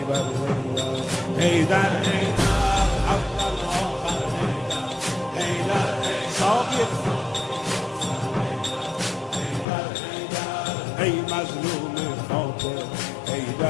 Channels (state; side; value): drops out; right; at 9.7 s